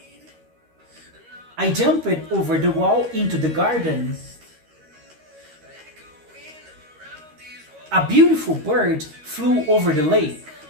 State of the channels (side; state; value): left; late; 13 ms